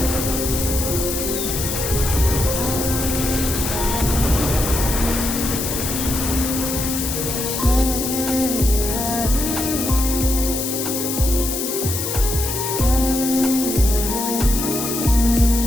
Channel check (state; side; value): noise; left; hiss, 3 dB below the sound